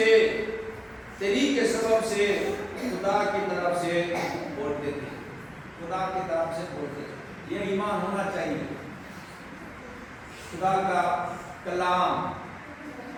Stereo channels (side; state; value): both; identical; correlation 1.00